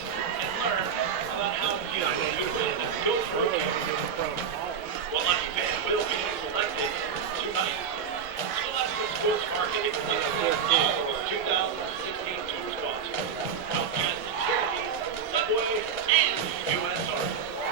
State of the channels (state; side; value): quieter; left; 6.9 dB